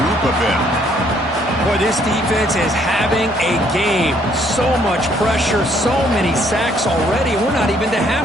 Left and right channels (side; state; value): both; normal; correlation 0.66